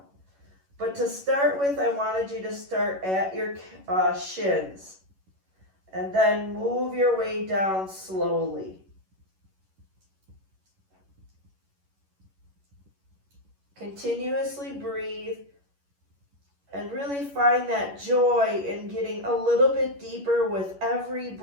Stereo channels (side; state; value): left; late; 11 ms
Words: But to start with, I wanted you to start at your shins and then move your way down slowly. Continuously breathe and really find that joy in getting a little bit deeper with every